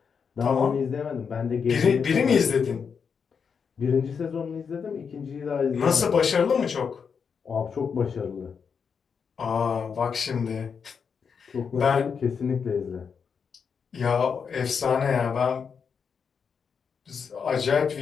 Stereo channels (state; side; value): quieter; right; 6.3 dB